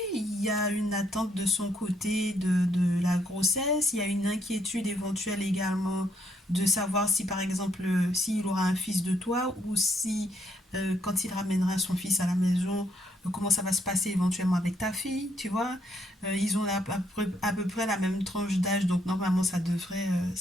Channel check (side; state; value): both; normal; correlation 0.73